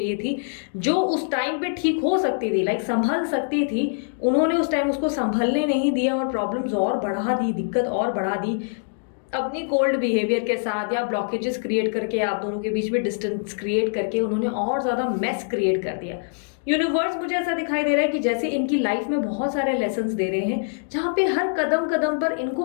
थी, जो उस टाइम पे ठीक हो सकती थी, लाइक संभल सकती थी, उन्होंने उस टाइम उसको संभलने नहीं दिया और प्रॉब्लम्स और बढ़ा दी, दिक्कत और बढ़ा दी अपनी कोल्ड बिहेवियर के साथ या ब्लॉकेजेस क्रिएट करके, आप दोनों के बीच में डिस्टेंस क्रिएट करके उन्होंने और ज्यादा मेस क्रिएट कर दिया। यूनिवर्स मुझे ऐसा दिखाई दे रहा है कि जैसे इनकी लाइफ में बहुत सारे लेसन्स दे रहे हैं जहां पे हर कदम कदम पर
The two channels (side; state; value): right; silent; digital silence